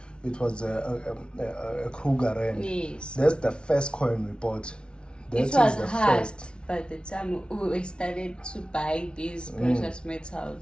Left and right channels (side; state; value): right; late; 0.057 ms